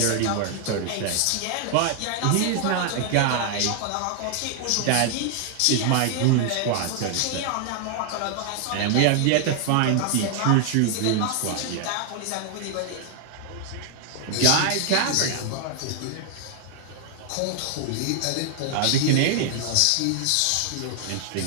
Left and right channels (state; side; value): different; both; correlation 0.00